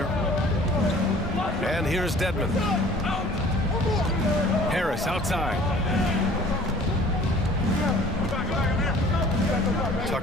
And here's Dedmon. Harris outside.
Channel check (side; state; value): both; normal; correlation 0.50